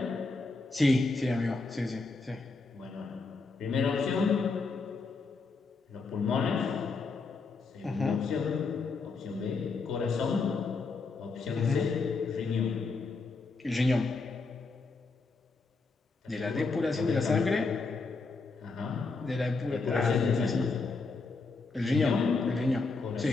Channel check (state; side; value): quieter; right; 4.0 dB